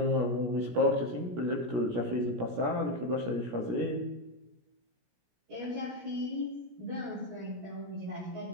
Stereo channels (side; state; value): left; late; 17 ms